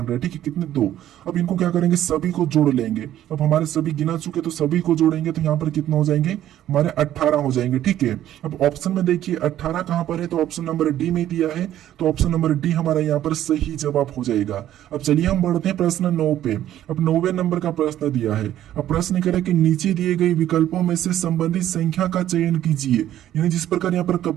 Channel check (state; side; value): quieter; left; 12.2 dB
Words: हैं, ठीक है, कितने 2। अब इनको क्या करेंगे, सभी को जोड़ लेंगे। अब हमारे सभी गिना चुके तो सभी को जोड़ेंगे, तो यहाँ पर कितना हो जाएंगे, हमारे 18 हो जाएंगे, ठीक है। अब ऑप्शन में देखिए 18 कहां पर है, तो ऑप्शन नंबर डी में दिया है, तो ऑप्शन नंबर डी हमारा यहाँ पर सही जवाब हो जाएगा। अब चलिए हम बढ़ते हैं प्रश्न 9 पे। अब 9वें नंबर का प्रश्न दिया है। अब प्रश्न कह रहा है कि नीचे दिए गए विकल्पों में से संबंधित संख्या का चयन कीजिए, यानी जिस प्रकार यहाँ पर